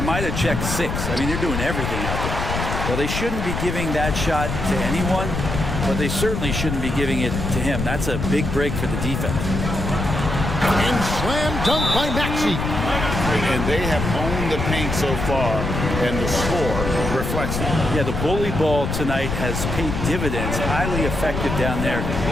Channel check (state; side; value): noise; left; rumble, 3 dB below the sound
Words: might have checked 6. I mean, they're doing everything out there. Well, they shouldn't be giving that shot to anyone, but they certainly shouldn't be giving it to him. That's a big break for the defense. And slam dunk by Maxey. And they have owned the paint so far, and the score reflects that. Yeah, the bully ball tonight has paid dividends. Highly effective down there